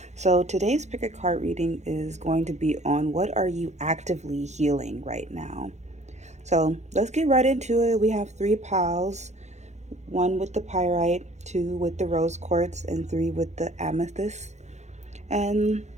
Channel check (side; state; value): left; late; 0.33 ms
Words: So, today's pick a card reading is going to be on what are you actively healing right now. So, let's get right into it. We have three piles, one with the pyrite, two with the rose quartz, and three with the amethyst. And